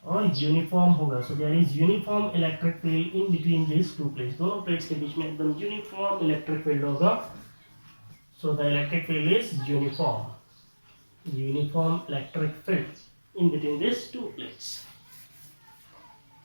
और यूनिफॉर्म होगा. So there is uniform electric field in between this two plates. दोनों प्लेट्स के बीच में एकदम यूनिफॉर्म इलेक्ट्रिक फील्ड होगा. So the electric field is uniform electric field in between this two plates.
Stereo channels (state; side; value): inverted; both; correlation -1.00